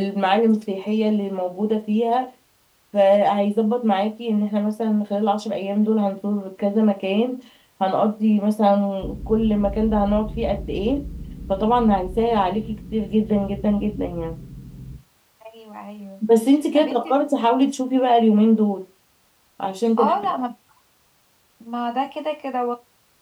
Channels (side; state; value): both; identical; correlation 1.00